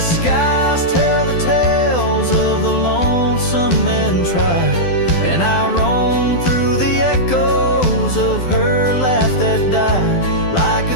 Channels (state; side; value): late; right; 12 ms